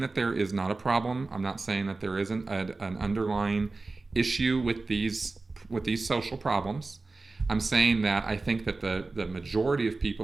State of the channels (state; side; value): quieter; left; 3.5 dB